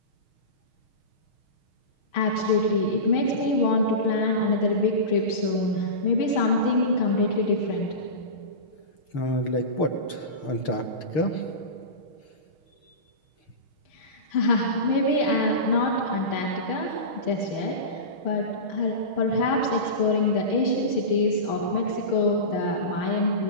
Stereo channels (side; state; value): right; late; 6.4 ms